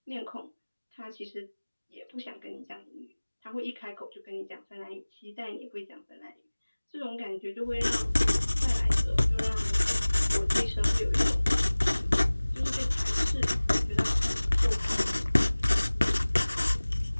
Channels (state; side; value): inverted; both; correlation -1.00